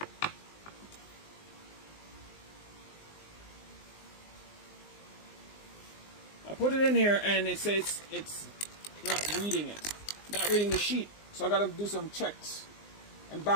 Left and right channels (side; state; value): right; late; 19 ms